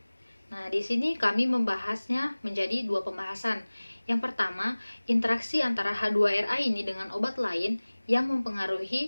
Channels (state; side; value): inverted; both; correlation -1.00